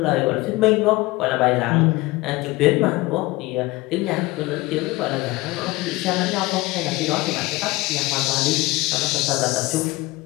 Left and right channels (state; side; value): quieter; right; 21.1 dB